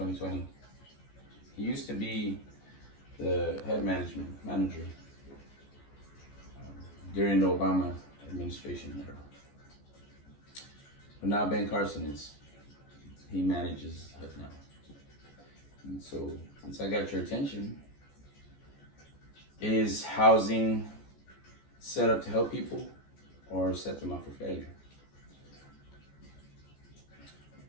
He used to be the head manager during the Obama administration era. But now Ben Carson is. He manages it now. And so, since I got your attention, is housing set up to help people or set them up for failure?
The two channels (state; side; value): late; right; 14 ms